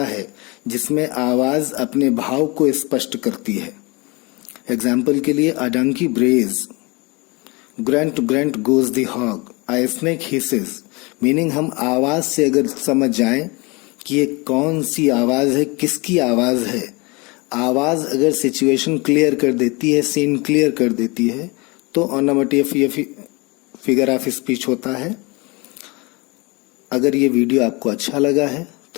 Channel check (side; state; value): right; quieter; 26.9 dB